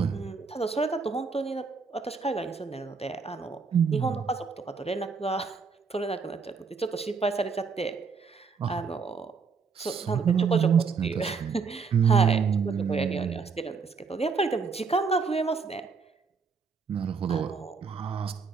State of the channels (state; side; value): quieter; left; 5.2 dB